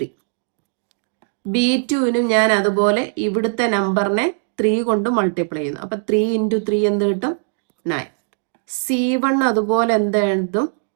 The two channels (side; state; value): left; silent; digital silence